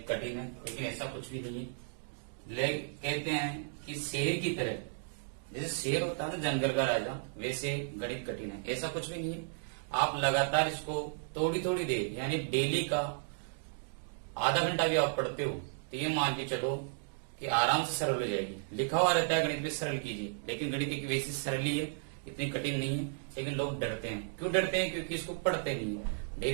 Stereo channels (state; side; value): silent; left; digital silence